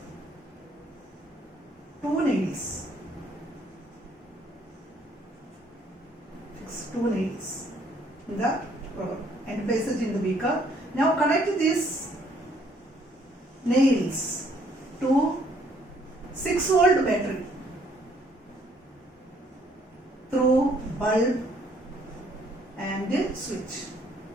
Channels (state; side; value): normal; both; correlation 0.65